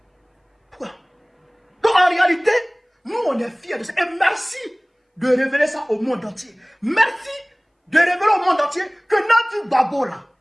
Pourquoi? Donc en réalité, nous on est fiers de ça. Et merci de révéler ça au monde entier. Merci de révéler au monde entier que Nadi Babo là,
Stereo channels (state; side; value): identical; both; correlation 1.00